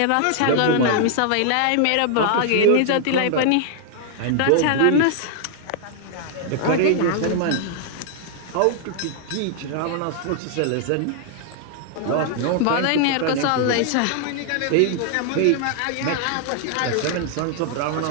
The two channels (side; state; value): both; different; correlation 0.00